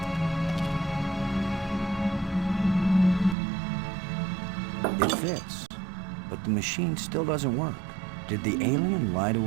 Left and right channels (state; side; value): drops out; left; at 3.4 s